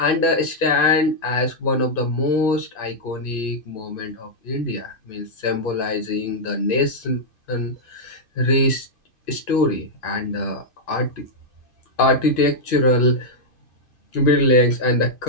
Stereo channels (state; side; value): late; right; 2.5 ms